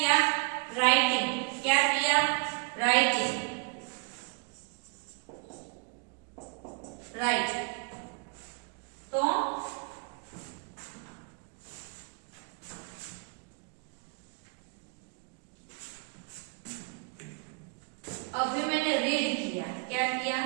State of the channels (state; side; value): quieter; left; 37.9 dB